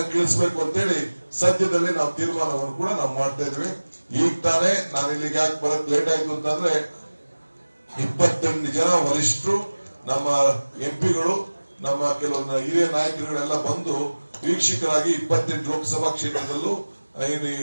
ಅಂತೇಳಿ ಸದ್ಯದಲ್ಲಿ ನಾವು ತೀರ್ಮಾನವನ್ನು ಕೂಡ ನಾವು ಮಾಡ್ತಾ ಇದ್ವಿ. ಈಗ ತಾನೇ ನಾನು ಇಲ್ಲಿಗೆ ಯಾಕೆ ಬರಕ್ ಲೇಟ್ ಆಯ್ತು ಅಂತಂದ್ರೆ, 28 ಜನ ವರಿಷ್ಠರು, ನಮ್ಮ ಎಂಪಿಗಳು, ನಮ್ಮ ಕೆಲವೊಂದು ಹಿರಿಯ ನಾಯಕರುಗಳೆಲ್ಲ ಬಂದು ವೀಕ್ಷಕರಾಗಿ 28 ಲೋಕಸಭಾ ಕ್ಷೇತ್ರದಲ್ಲೂ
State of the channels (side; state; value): both; inverted; correlation -1.00